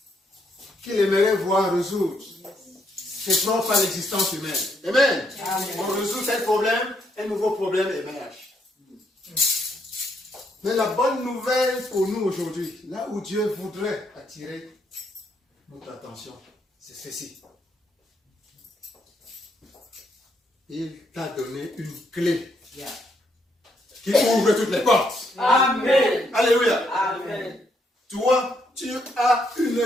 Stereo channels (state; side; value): normal; both; correlation 0.74